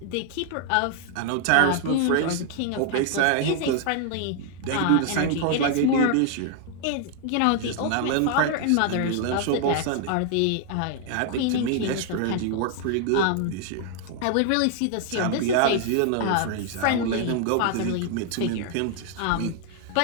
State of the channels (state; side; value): different; both; correlation 0.00